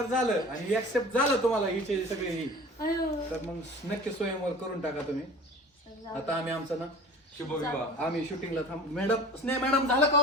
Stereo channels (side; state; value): both; normal; correlation 0.40